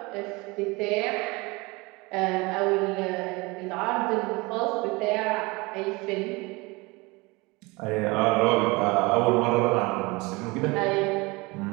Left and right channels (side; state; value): left; quieter; 24.6 dB